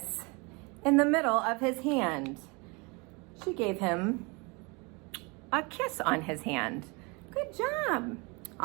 in the middle of his hand. She gave him a kiss on his hand. Good job.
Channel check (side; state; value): left; quieter; 29.1 dB